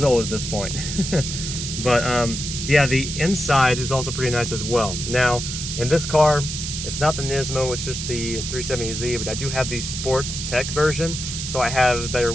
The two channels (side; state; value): right; noise; hiss, 5 dB below the sound